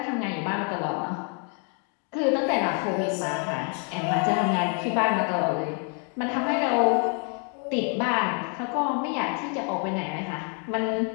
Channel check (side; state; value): right; quieter; 39.5 dB